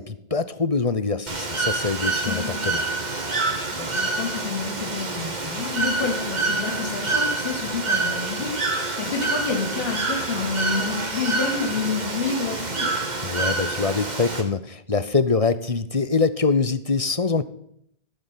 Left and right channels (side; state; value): left; late; 2.1 ms